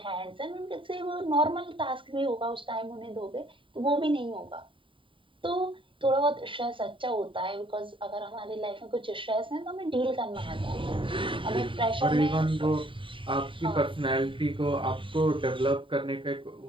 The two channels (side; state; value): left; late; 0.25 ms